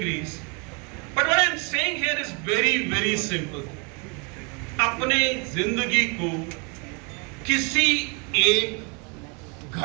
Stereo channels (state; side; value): quieter; left; 33.6 dB